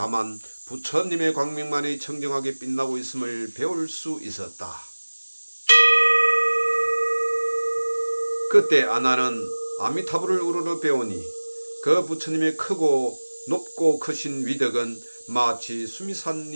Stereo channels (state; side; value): inverted; both; correlation -1.00